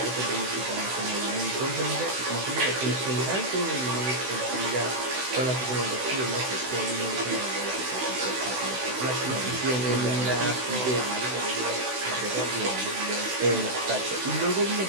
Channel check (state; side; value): late; left; 16 ms